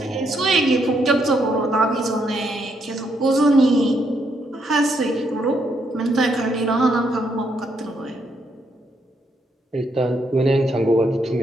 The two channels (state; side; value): normal; both; correlation 0.76